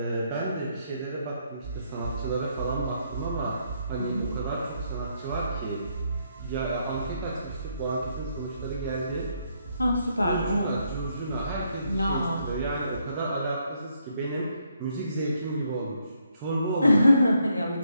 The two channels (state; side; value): inverted; both; correlation -0.74